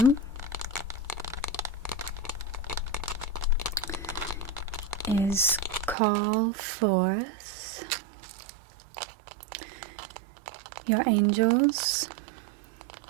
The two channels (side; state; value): left; drops out; at 6.0 s